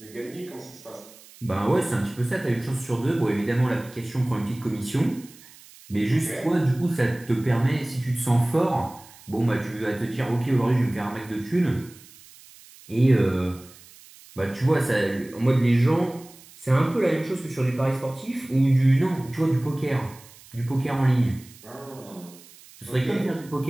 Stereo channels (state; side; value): noise; right; hiss, 22 dB below the sound